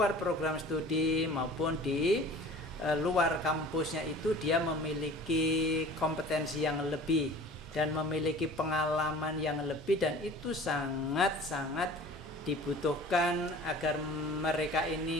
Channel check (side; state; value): both; normal; correlation 0.43